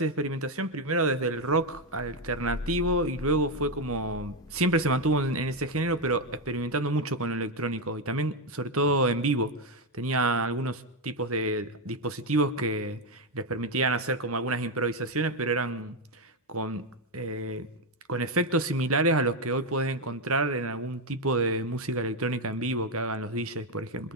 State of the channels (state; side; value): normal; both; correlation 0.06